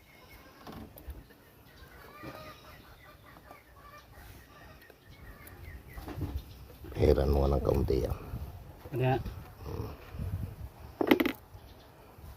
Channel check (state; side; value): identical; both; correlation 1.00